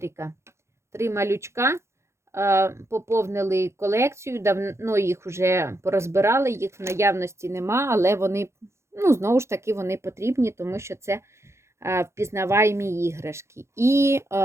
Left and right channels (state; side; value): late; left; 0.13 ms